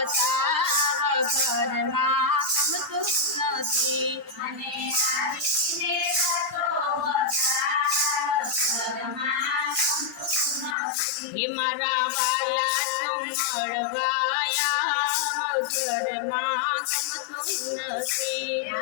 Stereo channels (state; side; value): drops out; right; at 10.8 s